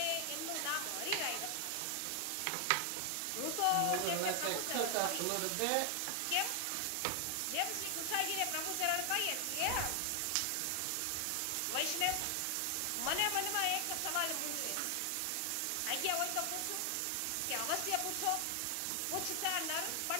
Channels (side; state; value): both; different; correlation 0.00